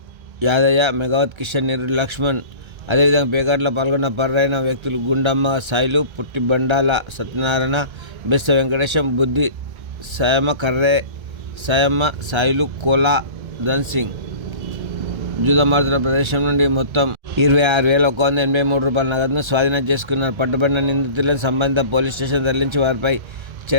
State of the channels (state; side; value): late; left; 1.3 ms